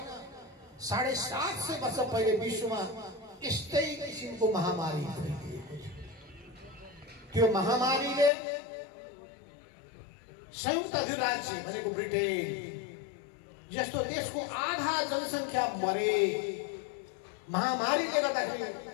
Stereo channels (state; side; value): drops out; right; at 8.3 s